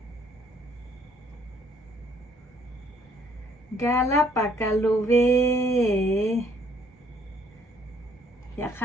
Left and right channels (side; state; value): both; normal; correlation 0.64